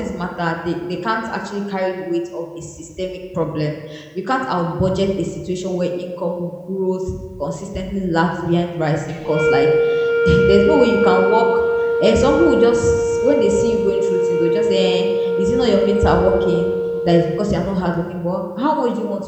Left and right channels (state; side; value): identical; both; correlation 1.00